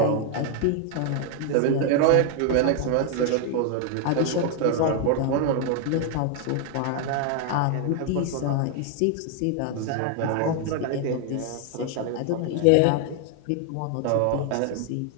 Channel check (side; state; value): both; different; correlation 0.00